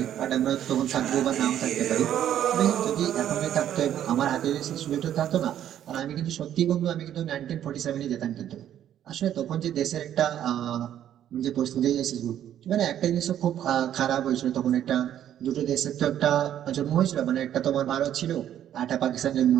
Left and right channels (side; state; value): left; quieter; 10.8 dB